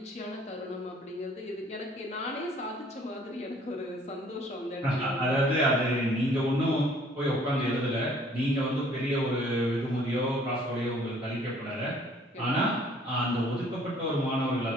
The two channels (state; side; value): normal; both; correlation 0.58